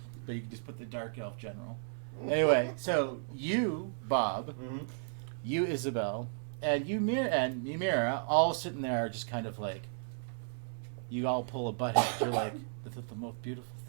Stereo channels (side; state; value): left; silent; 55 dB below the other